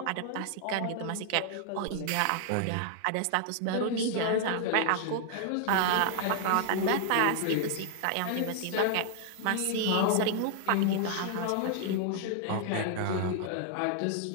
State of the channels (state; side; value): different; both; correlation 0.00